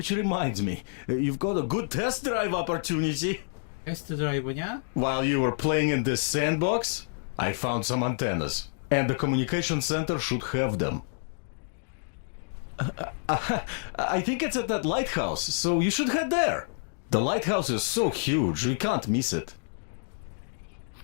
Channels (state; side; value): silent; right; digital silence